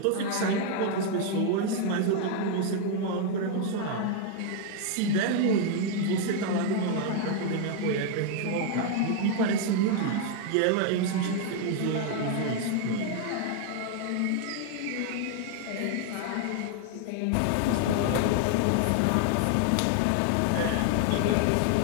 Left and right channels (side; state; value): both; different; correlation 0.00